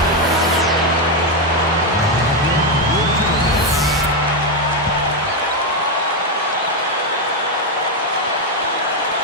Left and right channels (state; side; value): normal; both; correlation 0.06